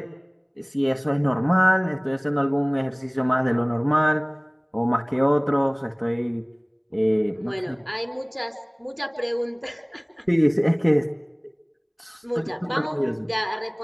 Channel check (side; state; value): both; identical; correlation 1.00